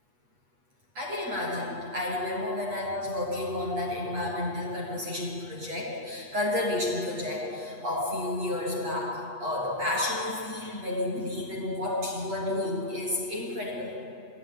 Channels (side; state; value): left; late; 8.3 ms